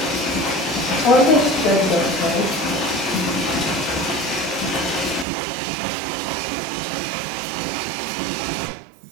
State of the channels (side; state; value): left; drops out; at 5.2 s